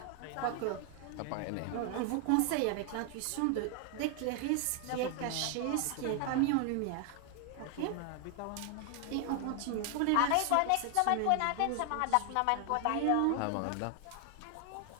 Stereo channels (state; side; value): different; both; correlation 0.00